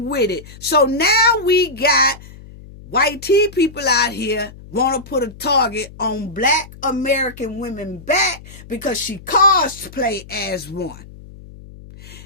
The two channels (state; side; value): noise; left; hum, 18 dB below the sound